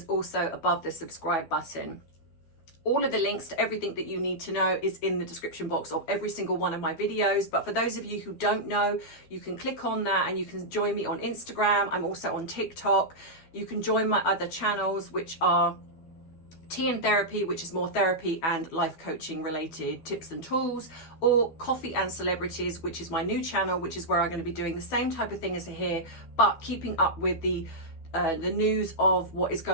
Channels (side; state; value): right; late; 12 ms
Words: also above the subscribe button. All of the links to everything that you need to know is in the description box of every single one of my videos. But for those of you who don't know, you can click on that and you can join me on Instagram. I'm also on TikTok. You can join my other channels, which are TandT, which is more therapy and life coaching related tips and tools, or Coffee and Celebrities, which is my new channel, which is where I'm going to be doing the same type of thing as here, but keeping up with the news of what is